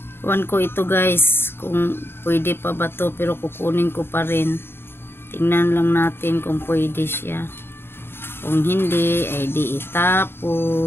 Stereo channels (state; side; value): late; right; 0.11 ms